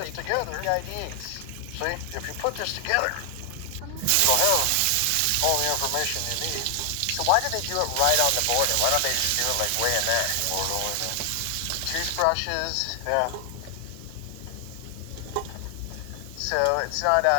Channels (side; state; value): both; different; correlation 0.00